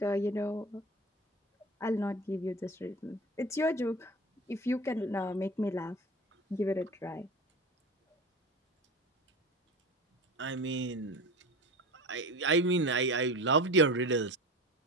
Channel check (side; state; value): both; normal; correlation 0.32